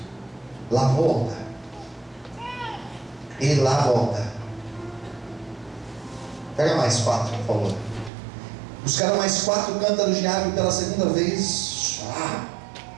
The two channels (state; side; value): drops out; left; at 8.1 s